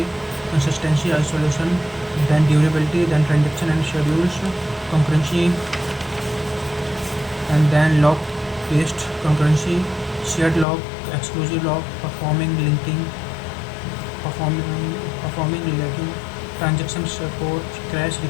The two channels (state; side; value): drops out; right; at 10.7 s